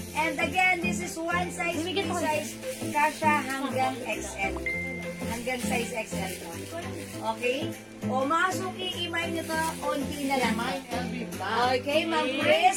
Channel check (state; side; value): identical; both; correlation 1.00